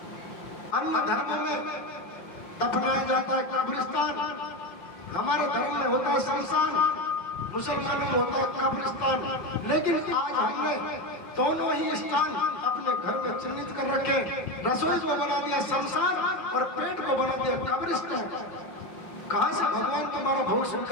अन्य धर्मों में दफनाया जाता है कब्रिस्तान, हमारे धर्म में होता है शमशान, मुसलमानों में होता है कब्रिस्तान। लेकिन आज हमने दोनों ही स्थान अपने घर में चिन्हित कर रखे, रसोई को बना दिया शमशान और पेट को बना दिया कब्रिस्तान। कहां से भगवान तुम्हारा भोग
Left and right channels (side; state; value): right; late; 5.4 ms